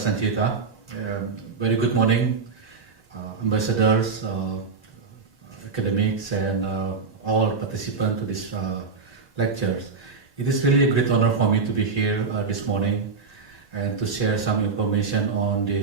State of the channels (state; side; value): quieter; left; 4.9 dB